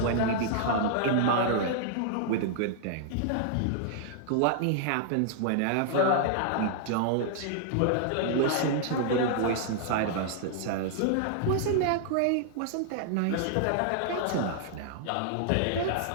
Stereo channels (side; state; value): both; different; correlation -0.01